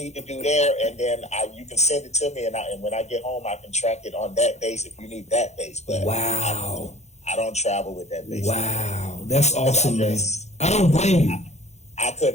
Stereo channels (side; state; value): right; late; 0.32 ms